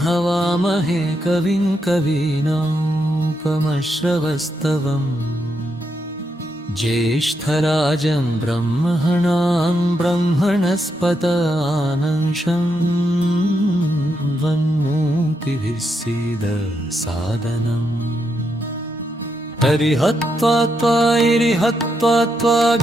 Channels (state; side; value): normal; both; correlation 0.81